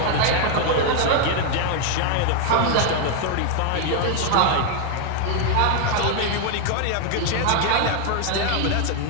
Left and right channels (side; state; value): both; different; correlation 0.00